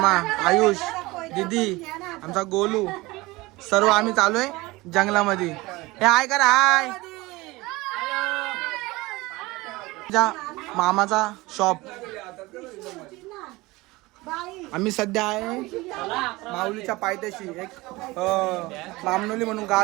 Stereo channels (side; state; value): left; quieter; 21.4 dB